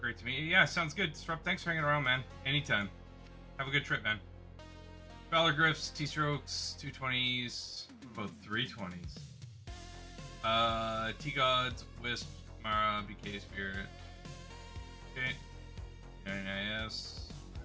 Great to meet you. Yeah, sounds good. Disrupt, thanks for hanging around, man. Anytime. Have a good trip, man. Valor Griffs, T-Strokes, 220s, both 320s. T-Gods, Wisp, Mara, BK Spirit. Okay. NIS.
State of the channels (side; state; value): both; identical; correlation 1.00